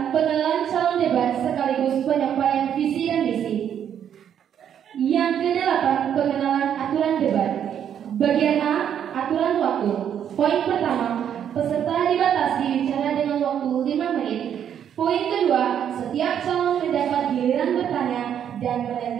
pengenalan calon debat sekaligus penyampaian visi dan misi. Yang kedelapan, pengenalan aturan debat. Bagian A, aturan waktu. Poin pertama, peserta dibatasi bicara dengan waktu 5 menit. Poin kedua, setiap calon mendapat giliran bertanya dan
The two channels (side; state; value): left; quieter; 9.1 dB